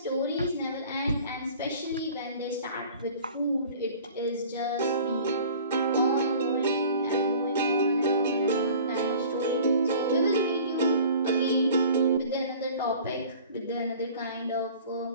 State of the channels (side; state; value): both; inverted; correlation -0.46